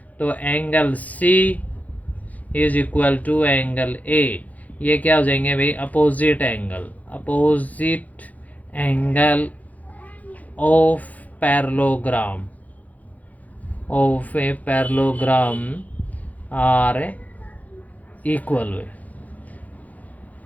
तो angle C is equal to angle A. ये क्या हो जाएंगे भाई, opposite angle of parallelogram a parallelogram are equal.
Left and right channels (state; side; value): late; right; 0.076 ms